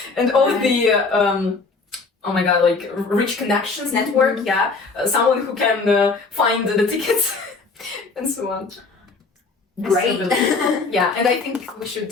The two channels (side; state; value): right; quieter; 4.1 dB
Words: and all the oh my god, like rich connections network. Yeah, someone who can find the tickets and so on. Great. Yeah, and I think we should